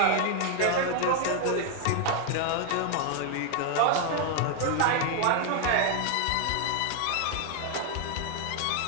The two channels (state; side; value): different; both; correlation 0.00